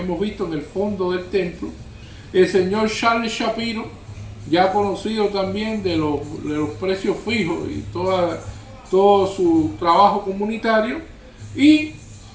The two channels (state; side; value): identical; both; correlation 1.00